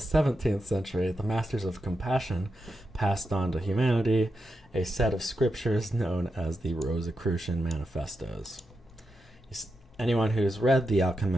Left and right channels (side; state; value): both; normal; correlation 0.87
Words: 17th century, the Masters of Compassion passed on to humanity a set of scriptures known as the Rosicrucian Manifestos. Anyone who's read The